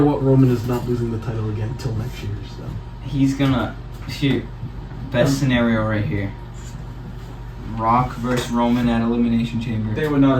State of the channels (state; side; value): identical; both; correlation 1.00